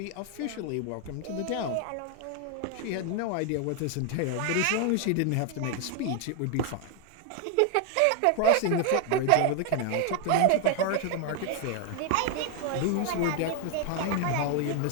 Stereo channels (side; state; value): both; different; correlation 0.00